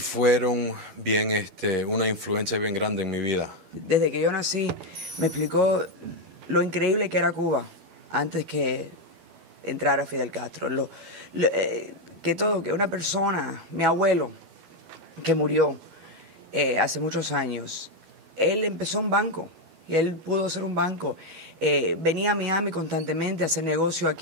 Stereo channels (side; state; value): left; late; 12 ms